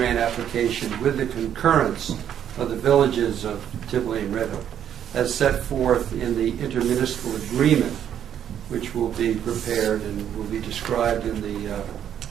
application with the concurrence of the villages of Tivoli and Red Hook, as set forth in the intermunicipal agreement, which will be prepared and will be described in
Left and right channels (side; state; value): left; quieter; 9.7 dB